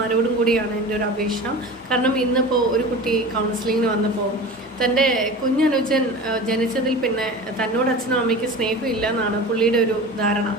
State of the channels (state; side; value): normal; both; correlation 0.34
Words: കൂടിയാണ് എൻ്റെ ഒരു അപേക്ഷ. കാരണം ഇന്നിപ്പോൾ ഒരു കുട്ടി കൗൺസിലിങ്ങിന് വന്നപ്പോൾ തൻ്റെ കുഞ്ഞനുജൻ ജനിച്ചതിൽ പിന്നെ തന്നോട് അച്ഛനും അമ്മയ്ക്ക് സ്നേഹമില്ല എന്നാണ് പുള്ളിയുടെ ഒരു ധാരണ.